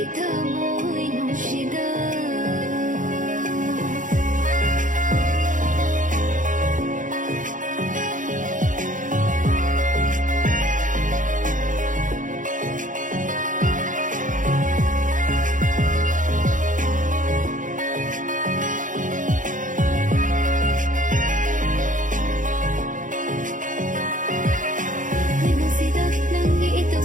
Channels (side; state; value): left; late; 0.38 ms